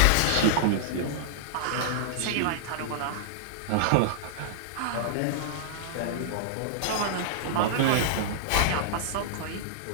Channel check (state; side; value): different; both; correlation -0.01